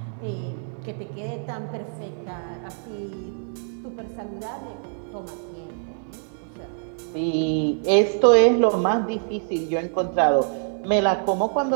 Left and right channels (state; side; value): silent; left; 62 dB below the other